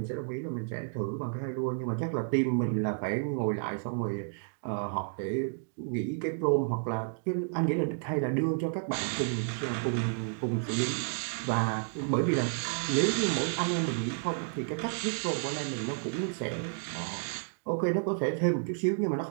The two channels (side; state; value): left; silent; digital silence